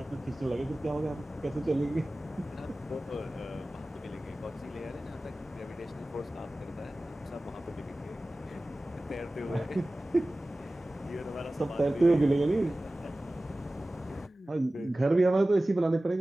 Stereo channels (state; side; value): normal; both; correlation 0.97